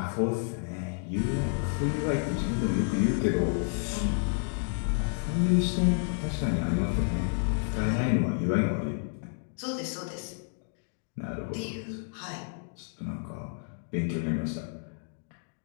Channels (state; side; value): silent; right; 58 dB below the other